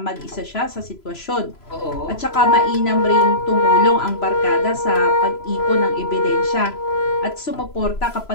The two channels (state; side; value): late; right; 3.0 ms